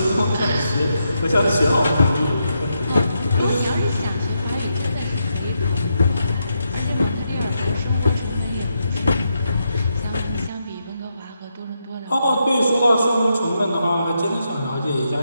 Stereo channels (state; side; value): inverted; both; correlation -0.82